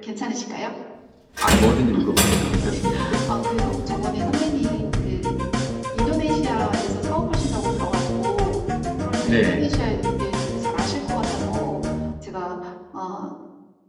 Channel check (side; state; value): both; identical; correlation 1.00